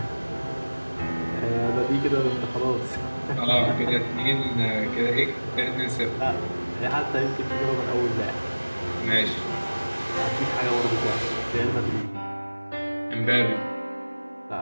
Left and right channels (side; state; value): both; inverted; correlation -1.00